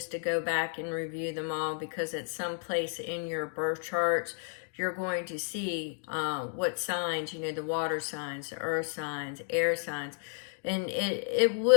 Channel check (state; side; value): silent; right; 57 dB below the other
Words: to go back and review them all because at some place in your birth charts, you're going to see what signs, the water signs, the earth signs, air signs, and it